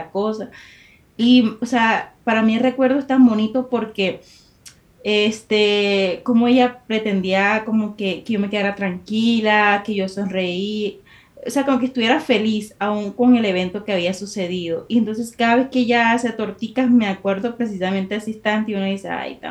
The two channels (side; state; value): both; identical; correlation 1.00